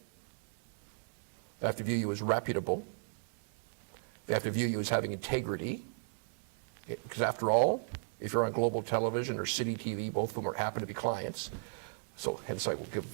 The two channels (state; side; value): silent; left; digital silence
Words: They have to view you as reputable. They have to view you as having integrity. Because after all, if you're on global television or city TV, both of them happen to be clients. So hence I will